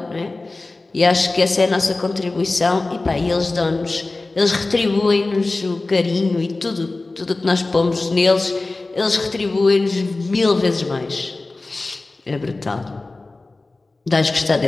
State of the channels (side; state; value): right; quieter; 3.3 dB